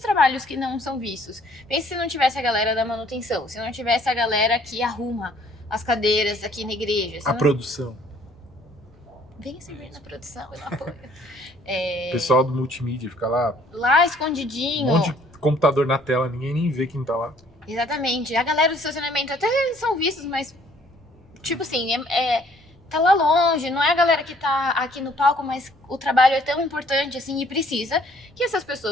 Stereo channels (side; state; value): both; normal; correlation 0.60